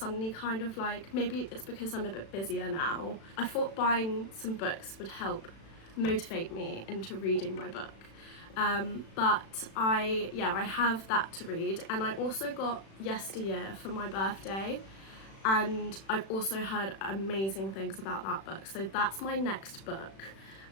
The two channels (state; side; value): late; right; 36 ms